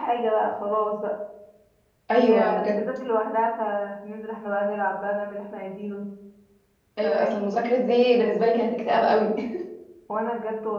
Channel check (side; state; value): both; identical; correlation 1.00